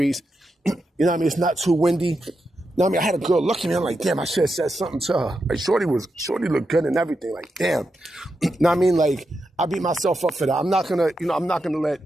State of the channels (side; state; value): both; normal; correlation 0.87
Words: It's not too windy. I had a girl look at me. I'm like, damn, I should have said something to her. Like, Shorty looked good and everything. Like, damn. Like, I beat myself up for that. I'm not gonna let